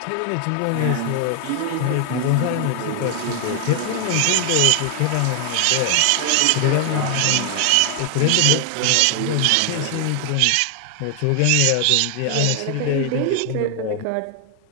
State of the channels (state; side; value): different; both; correlation 0.00